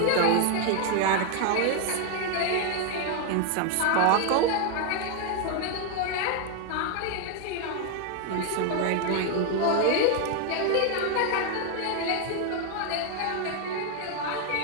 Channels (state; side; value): different; both; correlation 0.01